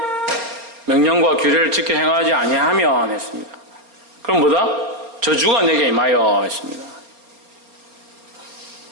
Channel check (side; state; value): left; late; 4.3 ms